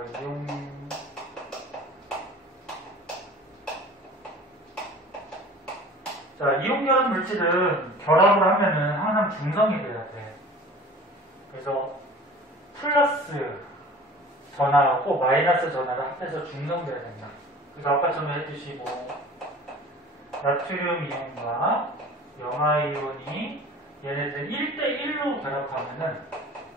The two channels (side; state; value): both; normal; correlation 0.43